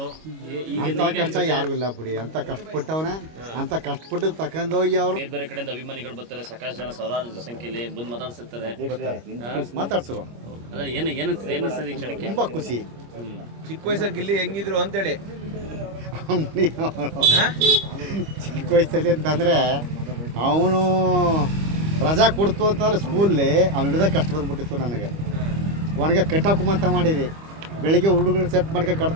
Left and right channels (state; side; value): late; left; 25 ms